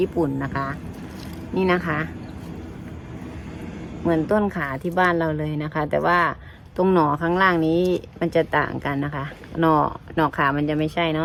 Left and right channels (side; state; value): both; identical; correlation 1.00